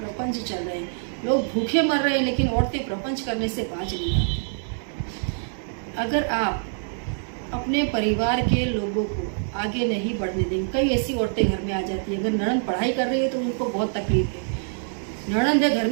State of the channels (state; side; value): silent; left; digital silence